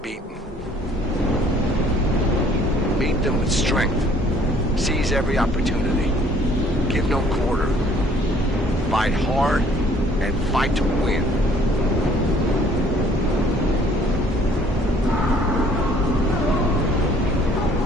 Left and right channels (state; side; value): normal; both; correlation 0.58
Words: Meet them with strength. Seize every opportunity. Give no quarter. Fight hard and fight to win.